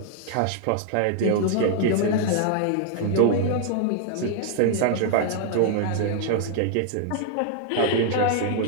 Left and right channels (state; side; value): different; both; correlation 0.00